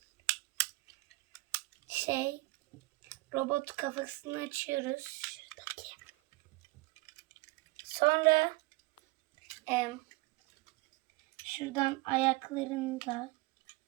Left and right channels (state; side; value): quieter; left; 23.2 dB